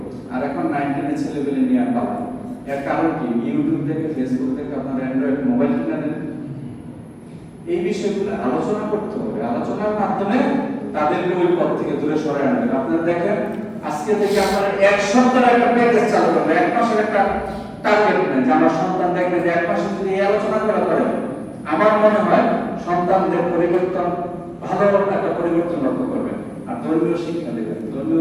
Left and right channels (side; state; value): both; identical; correlation 1.00